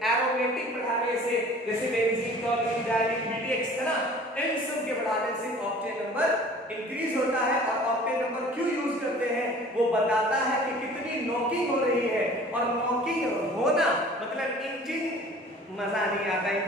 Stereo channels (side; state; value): both; normal; correlation 0.47